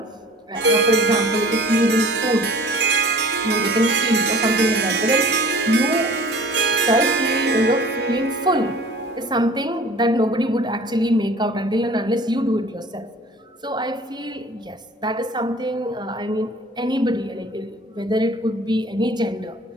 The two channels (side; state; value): both; normal; correlation 0.47